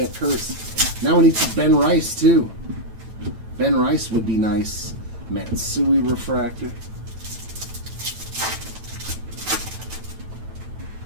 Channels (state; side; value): late; left; 9.0 ms